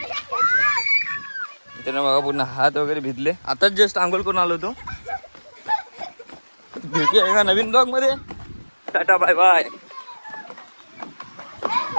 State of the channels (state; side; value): inverted; both; correlation -1.00